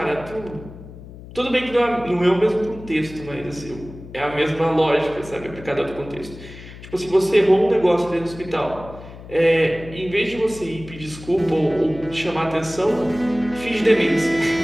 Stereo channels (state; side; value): noise; left; hum, 16 dB below the sound